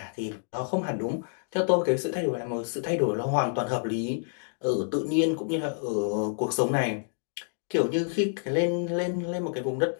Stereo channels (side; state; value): right; silent; digital silence